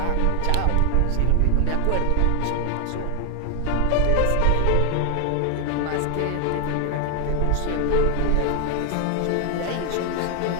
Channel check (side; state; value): both; different; correlation 0.00